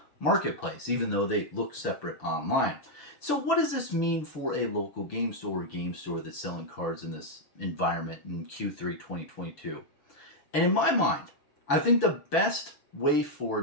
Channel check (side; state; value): right; late; 6.9 ms